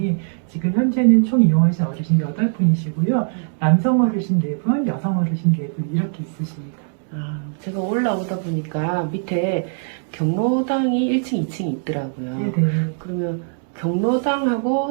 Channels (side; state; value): left; silent; digital silence